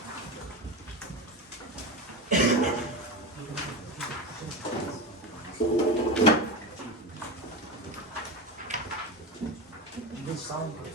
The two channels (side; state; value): both; normal; correlation 0.22